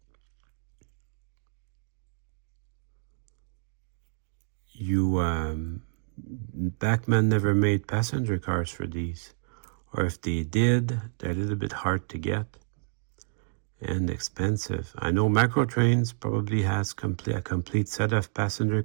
Bachmann never made passenger cars for these. Or if they did, they're a little bit hard to get and expensive. I know Microtrains probably has a complete set of passenger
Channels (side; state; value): left; silent; 59 dB below the other